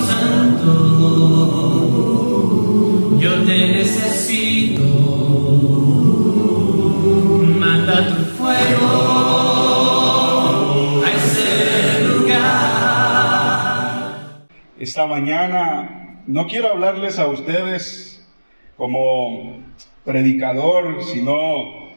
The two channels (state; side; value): inverted; both; correlation -1.00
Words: Santo, yo te necesito. Manda tu fuego a ese lugar. Esta mañana no quiero hablarles a ustedes como predicador, sino